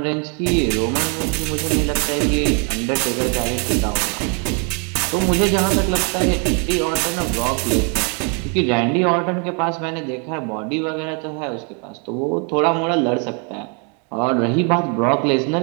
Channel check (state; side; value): quieter; left; 37.0 dB